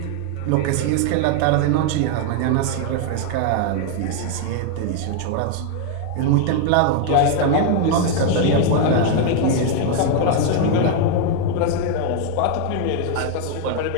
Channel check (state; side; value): different; both; correlation 0.00